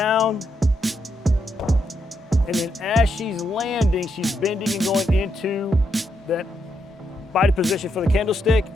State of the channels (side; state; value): both; normal; correlation 0.80